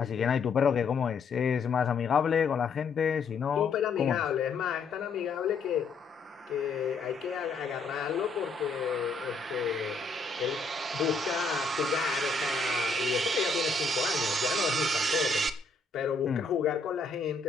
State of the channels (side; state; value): right; quieter; 4.0 dB